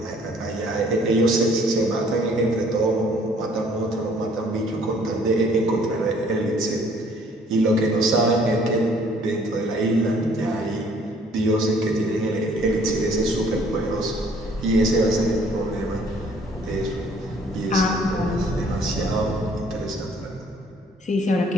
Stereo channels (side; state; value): both; normal; correlation 0.59